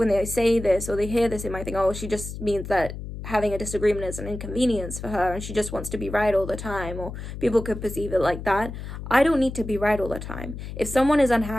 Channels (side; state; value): left; noise; hum, 9 dB below the sound